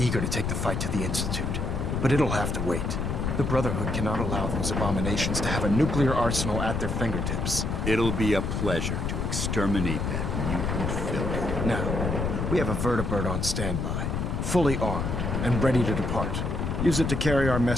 to take the fight to the Institute, but it'll have to wait. The Brotherhood cannot allow those abominations to have a nuclear arsenal at their fingertips. It'll be a pleasure to exterminate that mutant filth. Now, we have a vertibird on standby, fully armed and ready to depart. Use it to carry our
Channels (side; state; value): left; noise; rumble, 1 dB below the sound